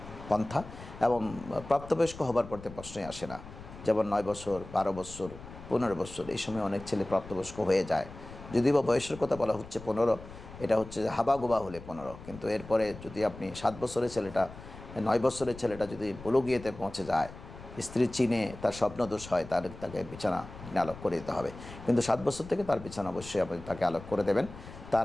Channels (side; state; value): left; noise; rumble, 15 dB below the sound